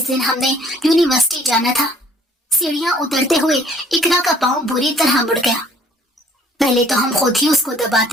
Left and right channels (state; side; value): normal; both; correlation 0.58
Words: दिन हमने यूनिवर्सिटी जाना था, सीढ़ियां उतरते हुए इकरा का पांव बुरी तरह मुड़ गया। पहले तो हम खुद ही उसको